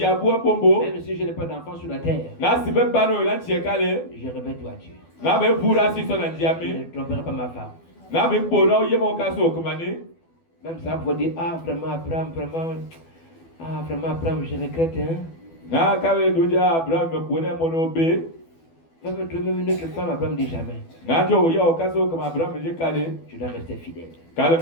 si je n'ai pas d'enfant sur la terre, je revêt toi Dieu. Je ne tromperai pas ma femme. Même ça pour dire, ah vraiment Abraham, je regrette, hein. Même une autre femme, Abraham dit jamais. Je dois rester fidèle.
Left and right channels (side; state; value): right; late; 12 ms